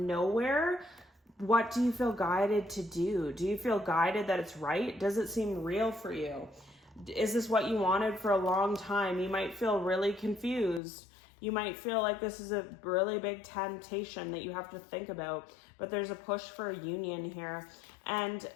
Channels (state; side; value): drops out; right; at 10.8 s